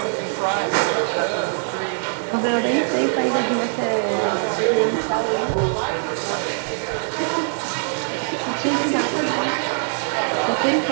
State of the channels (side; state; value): left; silent; 64 dB below the other